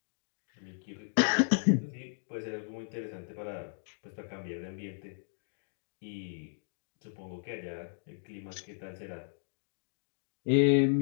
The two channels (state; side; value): silent; right; digital silence